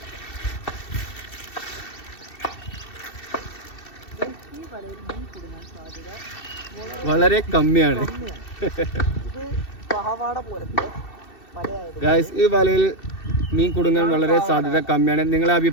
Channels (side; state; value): right; late; 2.7 ms